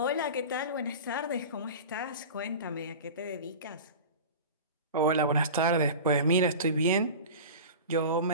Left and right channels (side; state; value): both; inverted; correlation -0.32